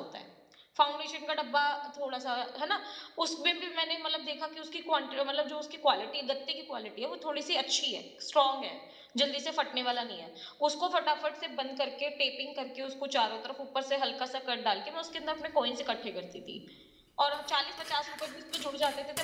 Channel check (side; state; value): both; identical; correlation 1.00